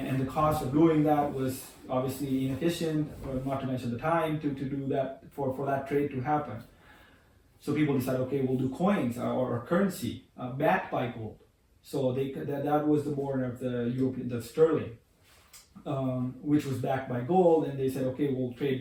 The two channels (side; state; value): both; identical; correlation 1.00